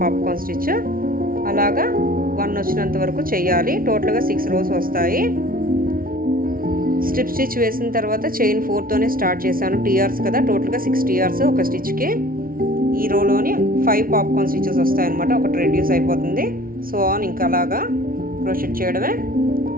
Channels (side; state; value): left; late; 0.42 ms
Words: పాప్కార్న్ స్టిచ్. అలాగా 1 వచ్చినంత వరకు చేయాలి. టోటల్గా 6 రోస్ వస్తాయి. స్ట్రిప్ స్టిచ్ వేసిన తర్వాత చైన్ 4తోనే స్టార్ట్ చేశాను. టీఆర్స్ కదా, టోటల్గా 6 టీఆర్స్ ఒక స్టిచ్కి. ఈ రోలోని 5 పాప్కార్న్ స్టిచెస్ వస్తాయన్నమాట, ఒకటి రెడ్యూస్ అయిపోతుంది. సో ఆన్ ఇంకా అలాగా క్రోషెట్ చేయడమే.